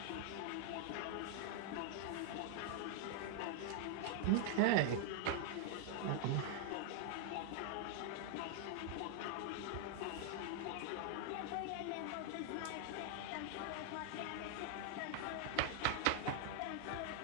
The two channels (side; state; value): both; different; correlation 0.00